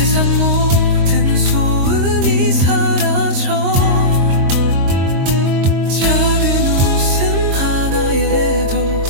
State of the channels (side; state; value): left; late; 22 ms